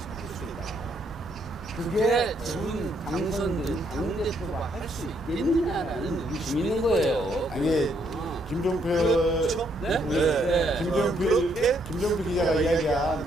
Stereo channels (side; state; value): both; normal; correlation 0.72